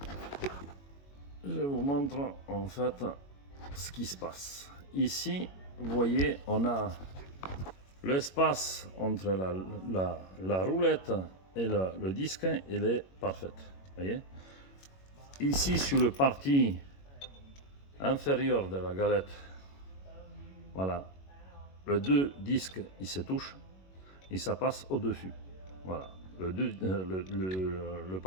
je vous montre en fait ce qui se passe. Ici, vous voyez, on a l'espace entre la roulette et le disque, il est parfait. Voyez. Ici, sur le partie inférieure de la galette, voilà, les deux disques ils se touchent et ça passe au-dessus. Voilà, le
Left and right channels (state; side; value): late; right; 21 ms